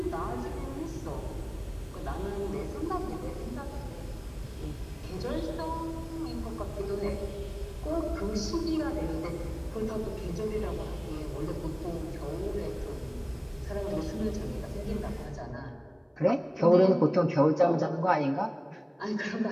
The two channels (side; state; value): both; identical; correlation 1.00